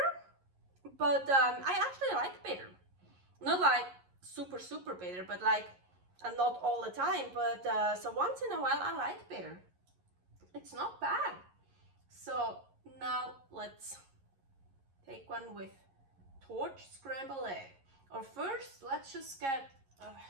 but I actually like bitter. Not like super, super bitter, but like, and not all the time, but so once in a while I like bitter. It's not bad. So now let's take one with torch scrambled egg. Or first, let's just get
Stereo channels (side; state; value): left; late; 11 ms